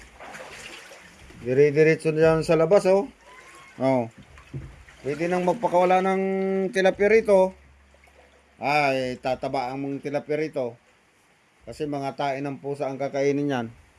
Dire-diretso dyan sa labas, oh. Oh. Pwede nang magpakawala ng tilapia rito. Ay, tataba ang mga tilapia rito. Kasi mga tain ng pusa ang kakainin yan.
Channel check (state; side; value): identical; both; correlation 1.00